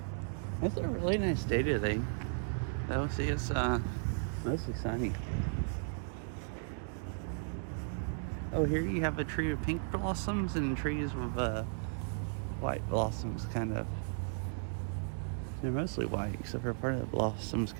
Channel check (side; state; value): left; silent; digital silence